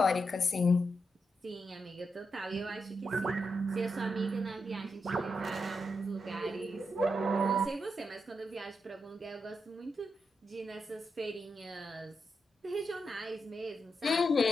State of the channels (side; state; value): both; normal; correlation 0.85